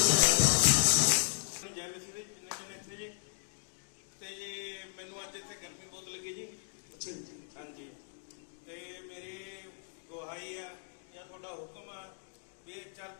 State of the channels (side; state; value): right; silent; digital silence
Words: ਜੈ ਮਸੀਹ ਦੀ ਜਿੰਨੇ ਜਣੇ ਇੱਥੇ ਜੀ ਤੇ ਜੀ ਮੈਨੂੰ ਅੱਜ ਇੱਥੇ ਕੈਂਪਿੰਗ ਬਹੁਤ ਲੱਗੀ ਜੀ अच्छा जी, ਹਾਂਜੀ ਤੇ ਮੇਰੀ ਗੁਹਾਈ ਹੈ ਜਾਂ ਤੁਹਾਡਾ ਹੁਕਮ ਹੈ ਵੀ ਇਹ